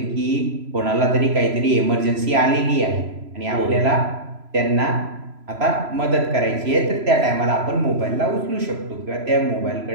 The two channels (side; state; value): left; late; 3.0 ms